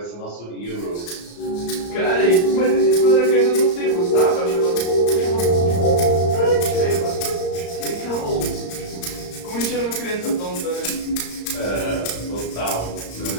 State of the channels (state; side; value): late; right; 34 ms